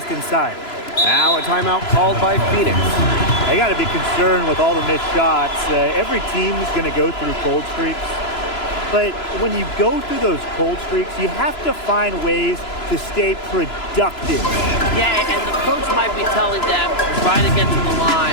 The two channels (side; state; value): right; late; 3.0 ms